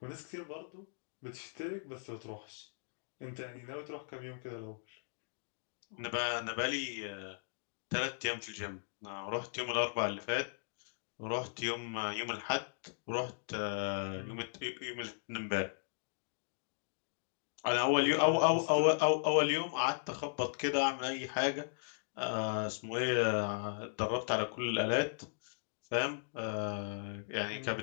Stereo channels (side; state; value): right; silent; digital silence